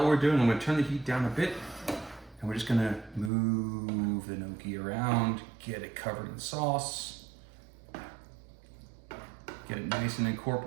we're doing, I'm gonna turn the heat down a bit, and we're just gonna move the gnocchi around, get it covered in sauce, get it nice and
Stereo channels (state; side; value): drops out; left; at 3.3 s